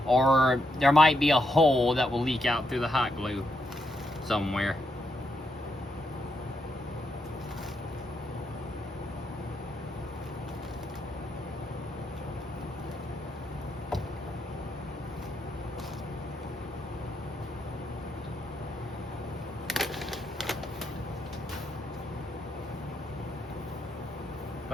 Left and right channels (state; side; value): normal; both; correlation 0.80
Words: or there might be a hole that will leak out through the hot glue somewhere.